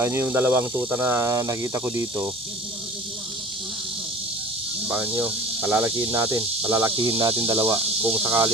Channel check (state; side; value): normal; both; correlation 0.41